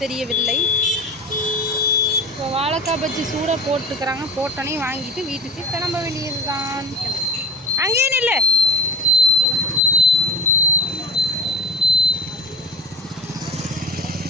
தெரியவில்லை. இப்போ வாழைக்காய் பஜ்ஜி சூடாக போட்டுக்கிறாங்க. போட்டோன்னே வாங்கிட்டு வீட்டுக்கு கிளம்ப வேண்டியது தான். அங்கேயே நில்லு.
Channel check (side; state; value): both; normal; correlation 0.32